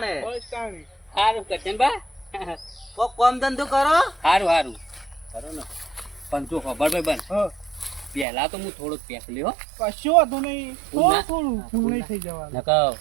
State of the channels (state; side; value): drops out; left; at 8.2 s